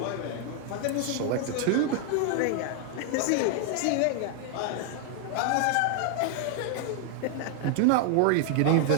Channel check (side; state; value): both; different; correlation 0.00